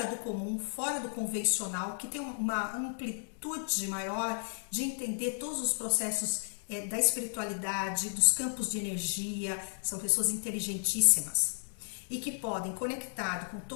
do comum, fora do convencional, que têm uma amplitude maior de entender todos os processos da espiritualidade, dos campos de energia. São pessoas inteligentíssimas e que podem, conectado com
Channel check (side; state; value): right; silent; 55 dB below the other